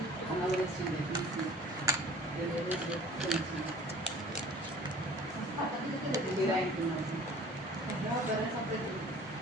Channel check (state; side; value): normal; both; correlation 0.48